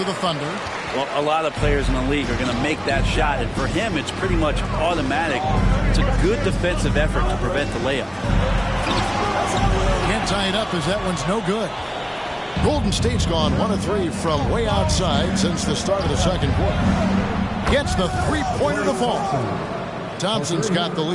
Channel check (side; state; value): both; identical; correlation 1.00